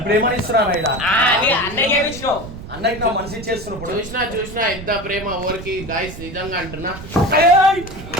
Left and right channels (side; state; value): right; noise; rumble, 12 dB below the sound